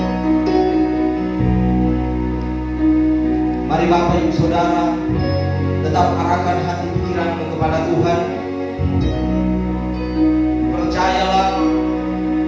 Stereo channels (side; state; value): both; identical; correlation 1.00